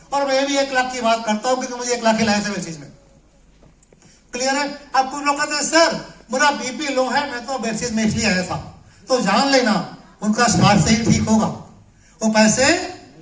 और मैं भी 1 लाख की बात करता हूं क्योंकि मुझे 1 लाख ही लाया था चीज में। क्लियर है? अब कुछ लोग कहते हैं सर मेरा बीपी लो है, मैं तो बेसिस में इसलिए आया था। तो जान लेना उनका स्वास्थ्य से ही ठीक होगा, वो पैसे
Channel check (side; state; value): both; identical; correlation 1.00